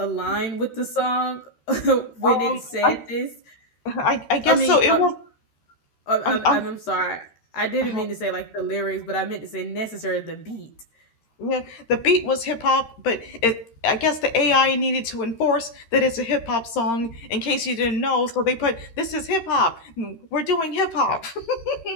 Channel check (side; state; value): right; late; 13 ms